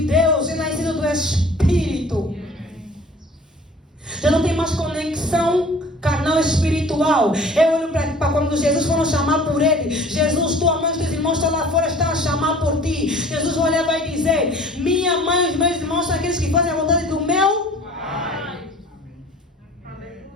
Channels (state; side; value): normal; both; correlation 0.48